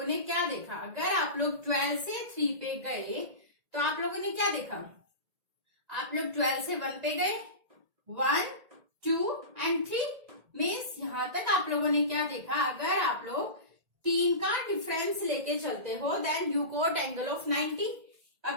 ने क्या देखा? अगर आप लोग 12 से 3 पे गए तो आप लोगों ने क्या देखा? आप लोग 12 से 1 पे गए, 1, 2 and 3 मीन्स यहां तक आप लोगों ने क्या देखा? अगर आप लोग 3 का डिफरेंस लेके चलते हो, then you got angle of 90।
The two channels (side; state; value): left; late; 1.8 ms